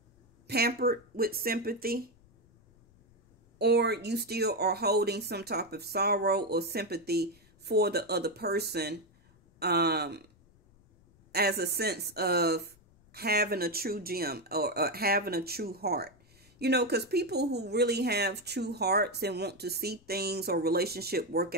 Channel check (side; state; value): left; noise; rumble, 29 dB below the sound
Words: pampered with sympathy, or you still are holding some type of sorrow or sympathy for the other person, as a sense of having a true gem or having a true heart. You know, because people who really have true hearts and want to see things or relationship work